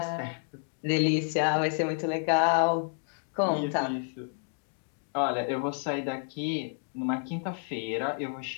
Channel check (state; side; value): silent; right; 55 dB below the other